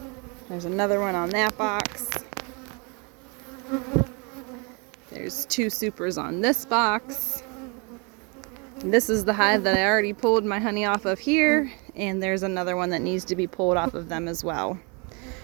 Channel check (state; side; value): quieter; left; 32.4 dB